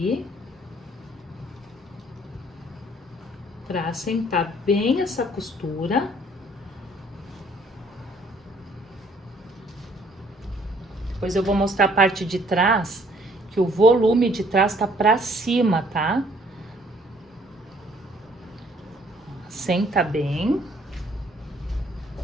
Para assentar bem essa costura. Depois eu vou mostrar a parte de trás, que o volume de trás tá para cima, tá? Senta bem.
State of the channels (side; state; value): both; normal; correlation 0.61